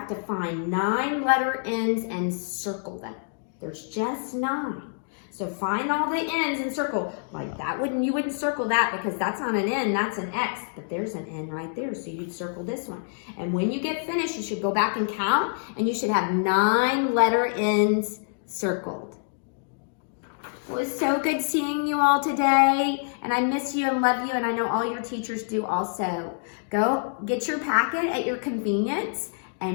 to find 9 letter N's and circle them. There's just 9. So find all the N's and circle. Like that you wouldn't circle that because that's not an N, that's an X. But there's an N right there, so you'd circle this one. And when you get finished, you should go back and count, and you should have 9 letter N's circled. It was so good seeing you all today, and I miss you and love you, and I know all your teachers do also. Go get your packet at your convenience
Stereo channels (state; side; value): silent; right; digital silence